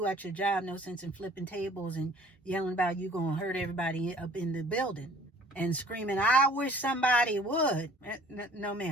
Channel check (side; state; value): both; normal; correlation 0.51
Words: at your job, no sense in flipping tables and yelling about you going to hurt everybody up in the building and screaming, I wish somebody would. No,